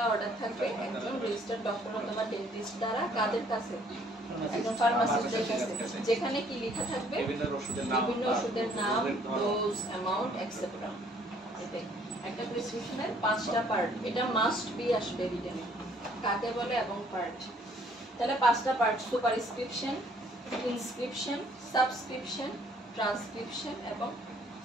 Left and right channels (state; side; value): normal; both; correlation 0.61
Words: order থাকবে একজন registered doctor অথবা dentist দ্বারা কাদের কাছে, একজন ফার্মাসিস্টের কাছে, যেখানে কি লেখা থাকবে বিভিন্ন ওষুধের নাম, ডোজ, অ্যামাউন্ট, এটসেট্রা। এটাই একটা প্রেসক্রিপশনের 5টা পার্ট, এটা মাস্ট বি আসবে রিটেনে, কাকে বলে এবং পার্ট। তাহলে 5টা পার্ট: সুপারস্ক্রিপশন, ইনস্ক্রিপশন, সাবস্ক্রিপশন, ট্রান্সক্রিপশন এবং